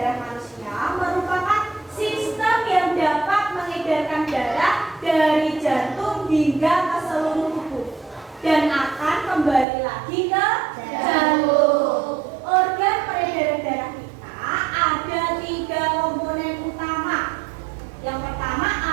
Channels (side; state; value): left; drops out; at 9.7 s